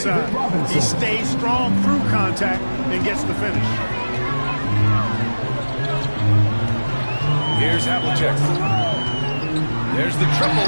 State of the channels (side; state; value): both; inverted; correlation -1.00